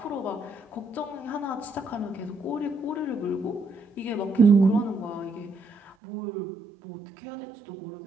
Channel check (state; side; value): drops out; left; at 6.0 s